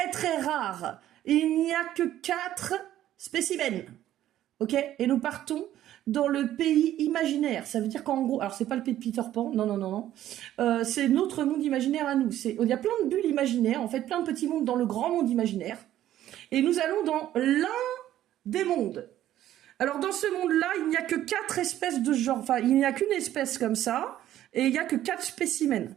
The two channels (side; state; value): left; quieter; 12.7 dB